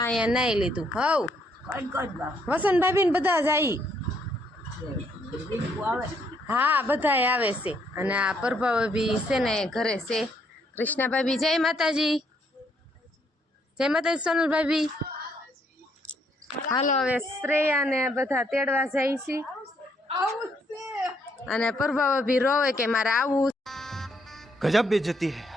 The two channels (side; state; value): both; normal; correlation 0.72